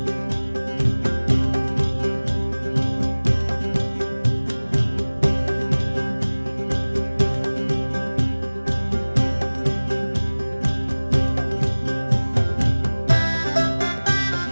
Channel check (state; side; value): inverted; both; correlation -1.00